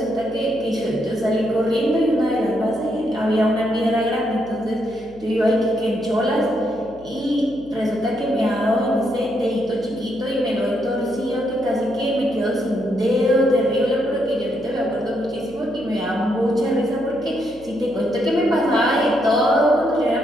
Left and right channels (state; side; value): noise; left; hum, 23 dB below the sound